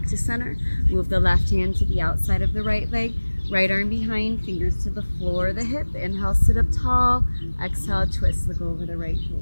to center. Move the left hand to the outside of the right leg. Right arm behind, fingers to the floor, the hip. Inhale, sit up tall. Exhale, twist, look over the right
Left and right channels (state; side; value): inverted; both; correlation -1.00